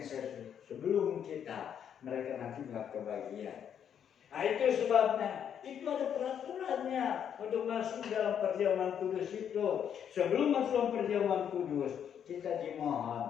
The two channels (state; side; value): quieter; right; 8.6 dB